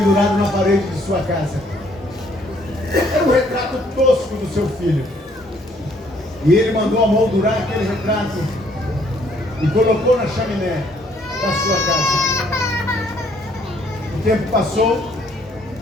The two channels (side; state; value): both; normal; correlation 0.64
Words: na parede de sua casa. Era um retrato tosco do seu filho. E ele mandou amoldurar aquele retrato e colocou na chaminé da sua casa. O tempo passou